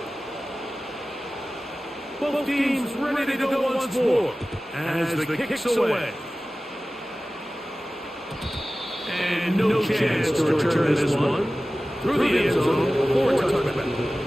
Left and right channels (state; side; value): normal; both; correlation 0.96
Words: Both teams ready to go once more as the kick's away. And no chance to return this one. Through the end zone for a touchback.